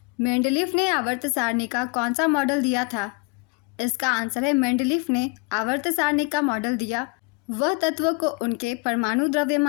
मेंडलीफ ने आवर्त सारणी का कौन सा मॉडल दिया था? इसका आंसर है मेंडलीफ ने आवर्त सारणी का मॉडल दिया वह तत्वों को उनके परमाणु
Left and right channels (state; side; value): quieter; right; 29.3 dB